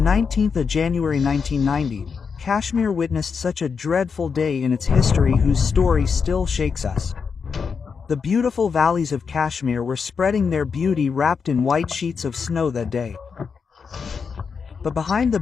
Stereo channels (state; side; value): quieter; right; 5.8 dB